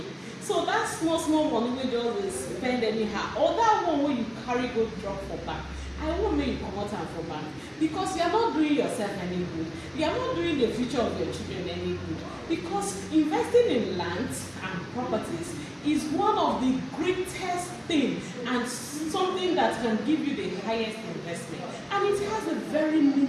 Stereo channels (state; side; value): identical; both; correlation 1.00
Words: So that small money wey just dey spend anyhow, or that one wey you carry go drop for bank, I won't make you comot am for bank, because you are not doing yourself any good. You are not doing the future of your children any good. Because investing in land and properties is one of the greatest things and something that can give you the highest investment. And it has a very